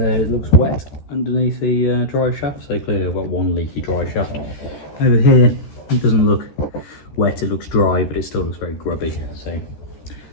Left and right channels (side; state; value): right; late; 13 ms